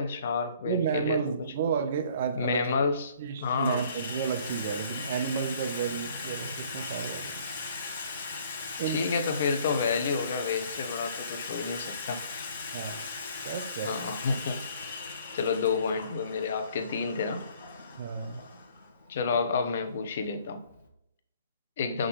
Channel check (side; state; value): both; inverted; correlation -0.57